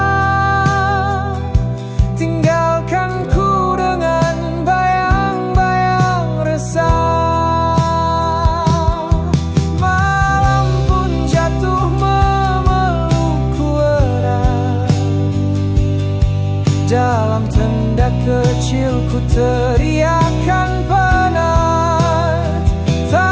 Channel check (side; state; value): both; identical; correlation 1.00